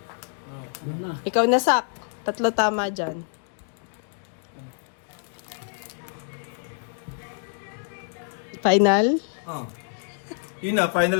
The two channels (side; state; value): right; silent; 61 dB below the other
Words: Ano na? Ikaw na, Sak. Tatlo tama dyan. Final? Oh. Yun na, final.